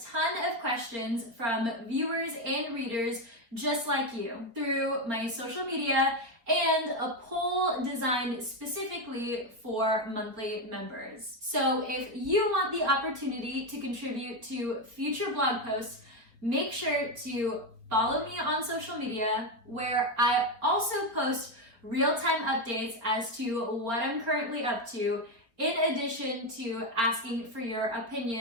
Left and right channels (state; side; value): late; left; 4.2 ms